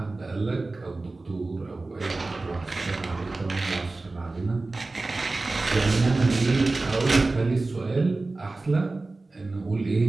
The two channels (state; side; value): quieter; left; 3.3 dB